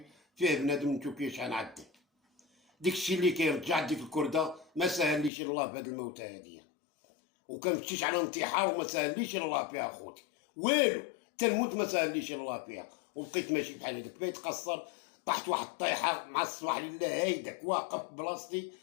فيه بنادم نشوف كيفاش غنعدل. ديك الشيء اللي كاين رجعت ديك الكرده ما سهليش الله بهاد الموتى هاديه، وكنمشيش على انتحار وما سهليش الله فيها اخوتي والو، تنموت ما سهليش الله فيها. وبقيت ماشي بحال هذاك بقيت قصر، طحت واحد الطيحه مع الصباح لله هيداك واقف بلاصتي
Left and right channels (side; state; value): right; drops out; at 5.3 s